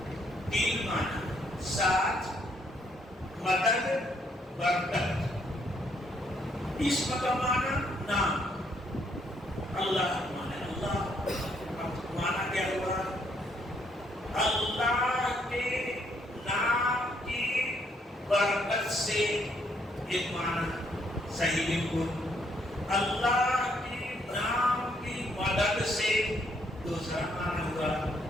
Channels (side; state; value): both; normal; correlation 0.71